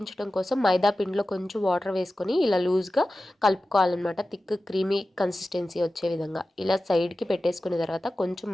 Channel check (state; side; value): normal; both; correlation 0.95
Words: కోసం మైదా పిండిలో కొంచెం వాటర్ వేసుకొని ఇలా లూజ్గా కలుపుకోవాలన్నమాట. థిక్ క్రీమీ కన్సిస్టెన్సీ వచ్చే విధంగా ఇలా సైడ్కి పెట్టేసుకున్న తర్వాత కొంచెం